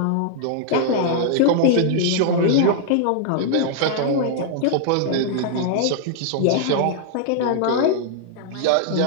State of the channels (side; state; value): both; different; correlation -0.01